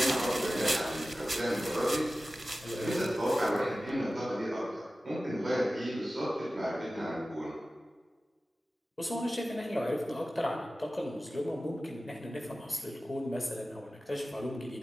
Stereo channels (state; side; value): normal; both; correlation 0.95